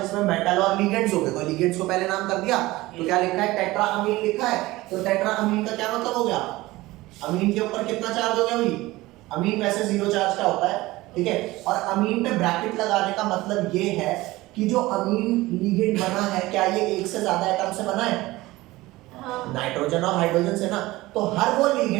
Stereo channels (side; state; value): left; quieter; 19.1 dB